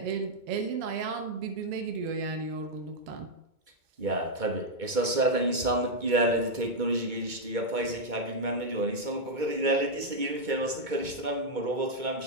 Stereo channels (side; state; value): left; late; 2.2 ms